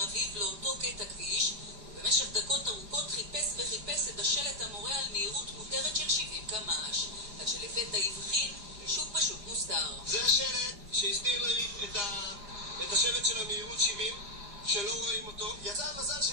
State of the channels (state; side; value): late; left; 5.0 ms